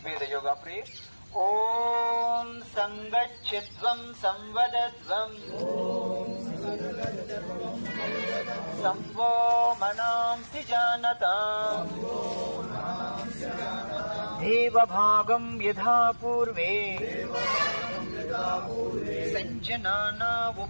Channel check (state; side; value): inverted; both; correlation -1.00